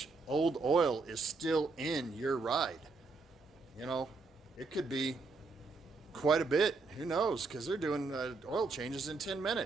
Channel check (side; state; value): left; quieter; 4.0 dB